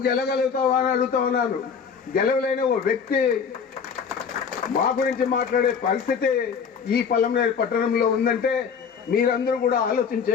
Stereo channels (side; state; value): right; quieter; 6.4 dB